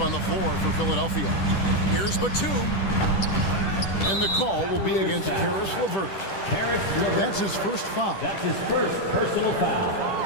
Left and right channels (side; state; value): right; late; 10 ms